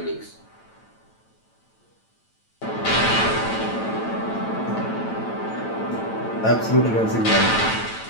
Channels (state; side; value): late; right; 9.0 ms